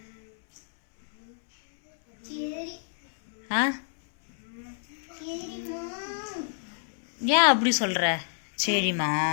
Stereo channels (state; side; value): silent; right; 59 dB below the other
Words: ஆ ஏன் அப்படி சொல்கிற?